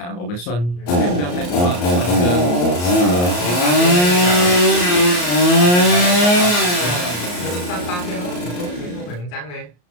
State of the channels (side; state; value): right; late; 34 ms